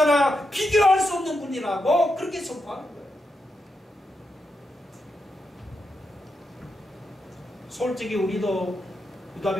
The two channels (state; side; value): normal; both; correlation 0.85